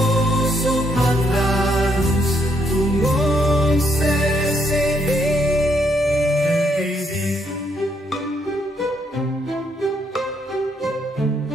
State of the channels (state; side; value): normal; both; correlation 0.73